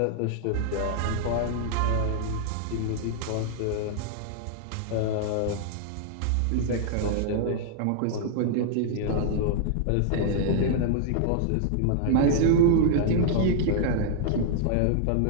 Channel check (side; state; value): both; different; correlation -0.01